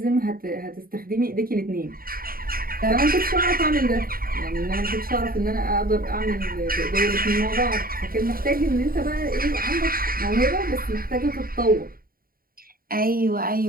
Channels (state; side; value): late; left; 0.42 ms